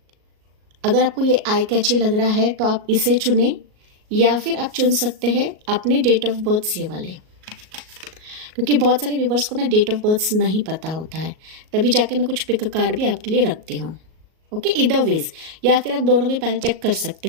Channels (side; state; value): left; late; 38 ms